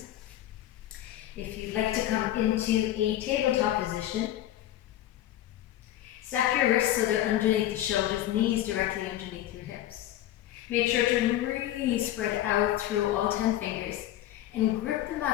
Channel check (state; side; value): quieter; right; 13.2 dB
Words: If you'd like to come into a tabletop position, stack your wrists so they're underneath the shoulders, knees directly underneath your hips. Make sure to really spread out through all 10 fingers and grip the